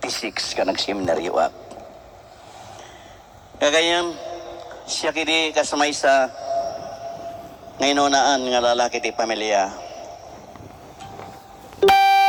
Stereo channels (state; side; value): identical; both; correlation 1.00